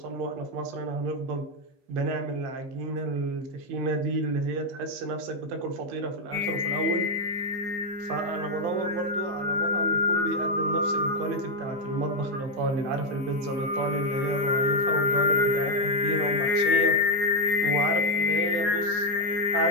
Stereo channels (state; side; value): late; left; 15 ms